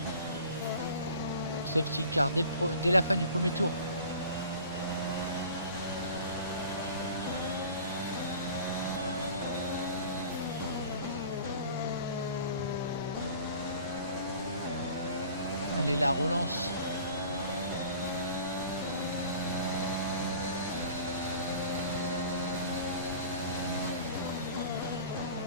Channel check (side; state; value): both; inverted; correlation -0.44